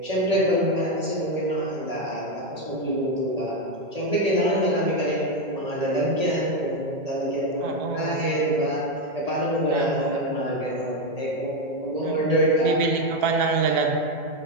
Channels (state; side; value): late; left; 1.8 ms